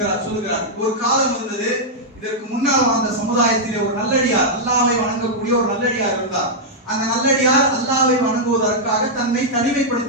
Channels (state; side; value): normal; both; correlation -0.06